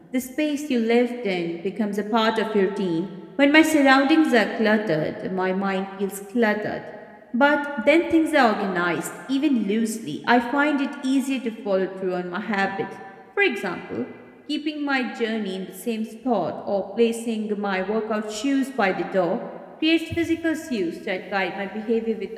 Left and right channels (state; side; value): identical; both; correlation 1.00